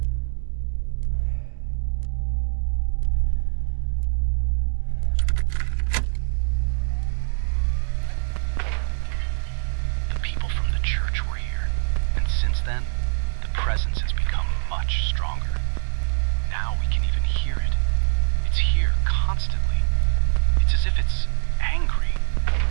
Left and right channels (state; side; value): silent; left; digital silence